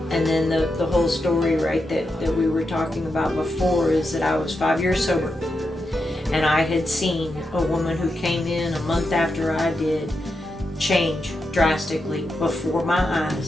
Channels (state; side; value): normal; both; correlation 0.86